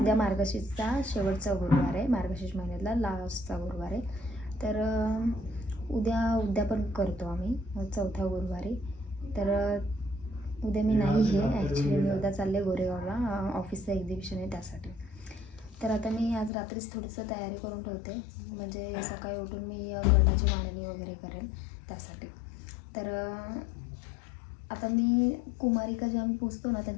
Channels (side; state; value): right; drops out; at 16.5 s